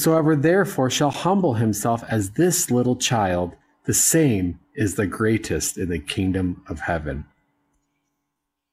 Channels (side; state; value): both; identical; correlation 1.00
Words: therefore shall humble himself as this little child, the same is the greatest in the kingdom of heaven.